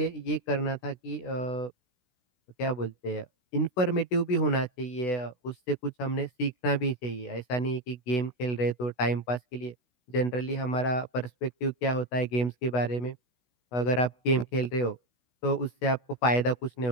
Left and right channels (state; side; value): late; right; 16 ms